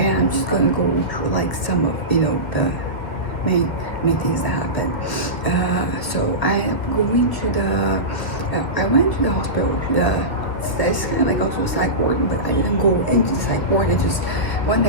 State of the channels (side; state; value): right; late; 1.5 ms